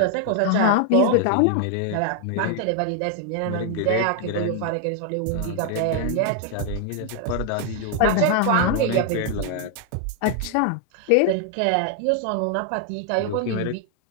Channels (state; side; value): different; both; correlation 0.00